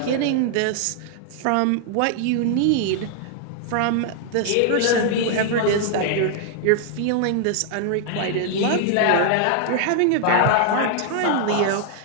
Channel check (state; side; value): different; both; correlation 0.00